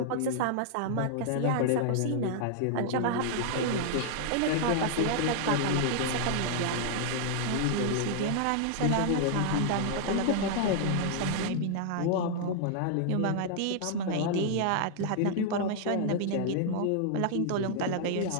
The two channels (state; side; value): different; both; correlation -0.01